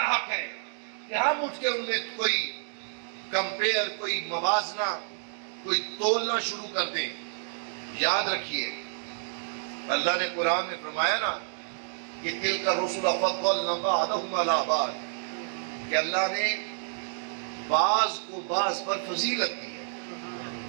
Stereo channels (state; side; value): silent; left; digital silence